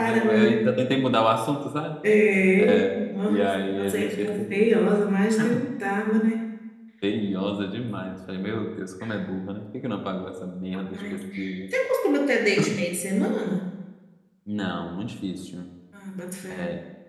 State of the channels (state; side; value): identical; both; correlation 1.00